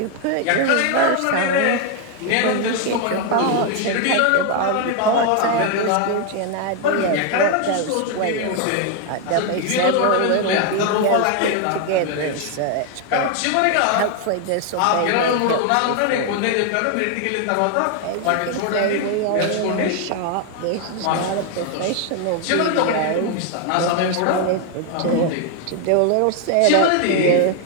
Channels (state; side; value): different; both; correlation 0.00